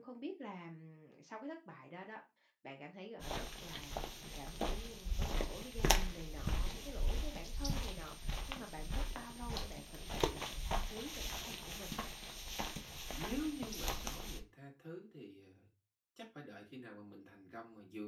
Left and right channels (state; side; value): identical; both; correlation 1.00